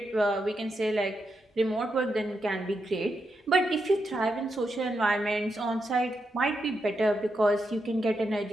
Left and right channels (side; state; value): both; normal; correlation 0.85